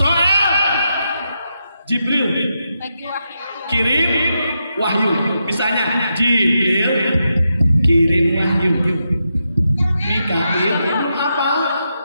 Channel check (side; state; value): both; inverted; correlation -0.85